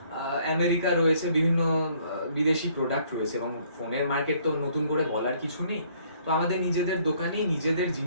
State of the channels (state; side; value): inverted; both; correlation -0.63